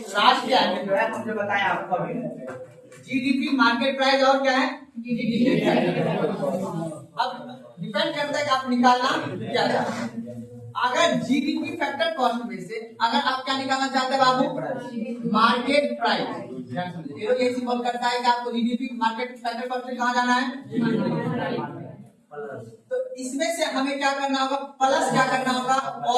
में जो है हमने बताया आपको अभी जीडीपी, मार्केट प्राइस और क्या है जीडीपी। अब डिपेंड करता है कि आप निकालना क्या चाहते हैं। अगर जीडीपी फैक्टर कॉस्ट में से अगर आप क्या निकालना चाहते हैं बाबू, मार्केट प्राइस, तो ये सिंबल करता है कि आपको जीडीपी मार्केट फैक्टर कॉस्ट में कहाँ जाना है। तो इसमें से हमें क्या करना होगा, प्लस क्या करना होगा,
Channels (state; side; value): identical; both; correlation 1.00